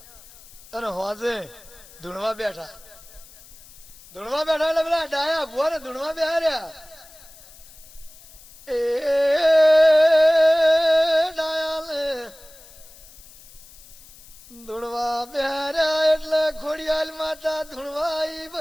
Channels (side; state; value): left; noise; hiss, 22 dB below the sound